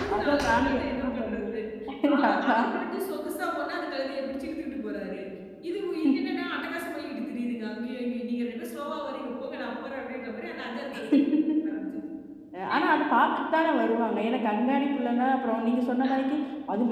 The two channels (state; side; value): identical; both; correlation 1.00